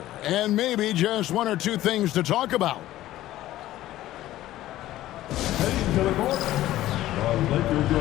and maybe just one or two things to talk about. Heading to the court, the Lakers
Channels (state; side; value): quieter; right; 14.7 dB